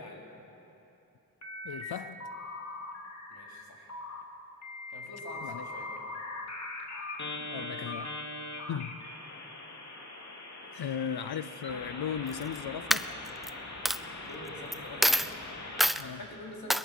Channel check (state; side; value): normal; both; correlation 0.51